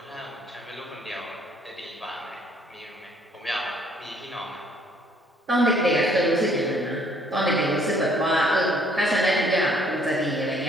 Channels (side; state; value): both; normal; correlation 0.62